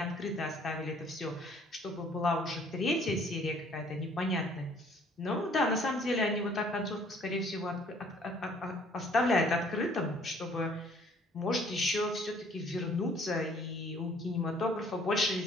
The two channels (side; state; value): both; normal; correlation 0.58